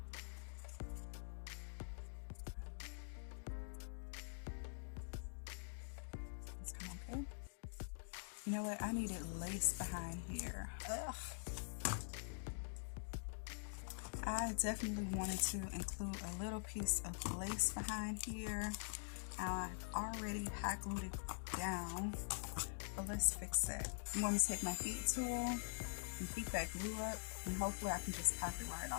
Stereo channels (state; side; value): silent; right; digital silence